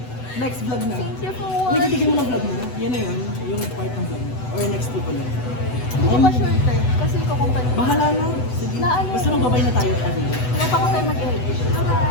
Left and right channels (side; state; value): right; late; 8.0 ms